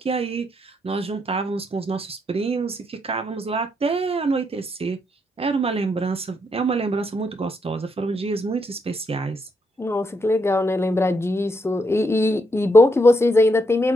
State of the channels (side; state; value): both; normal; correlation 0.77